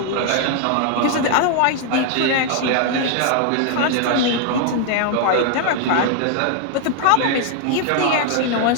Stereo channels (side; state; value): both; different; correlation 0.00